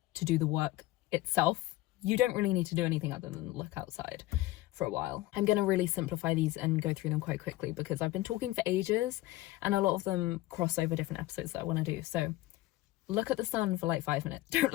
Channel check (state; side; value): quieter; right; 17.4 dB